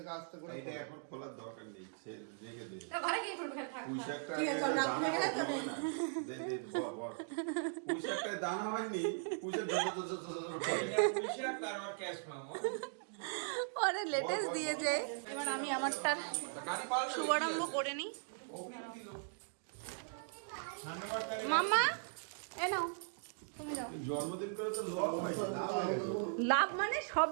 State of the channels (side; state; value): left; silent; digital silence